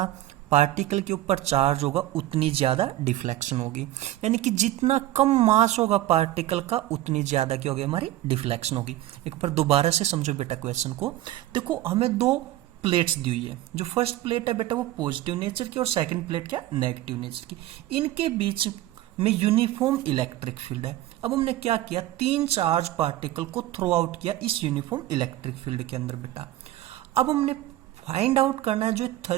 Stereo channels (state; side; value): quieter; left; 15.0 dB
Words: पार्टिकल के ऊपर चार्ज होगा उतनी ज्यादा डिफ्लेक्शन होगी, यानी कि जितना कम मास होगा पार्टिकल का उतनी ज्यादा क्या होगी हमारी डिफ्लेक्शन होगी। एक बार दोबारा से समझो बेटा क्वेश्चन को। देखो हमें दो प्लेट्स दी हुई है, जो फर्स्ट प्लेट है बेटा वो पॉजिटिव नेचर की और सेकंड प्लेट क्या नेगेटिव नेचर की। इनके बीच में यूनिफॉर्म इलेक्ट्रिक फील्ड है। अब हमने क्या किया, तीन चार्ज पार्टिकल को थ्रो आउट किया इस यूनिफॉर्म इलेक्ट्रिक फील्ड के अंदर बेटा। अब हमने फाइंड आउट करना है जो